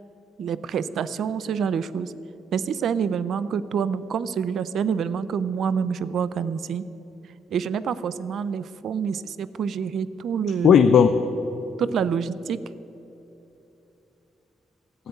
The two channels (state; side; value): normal; both; correlation 0.65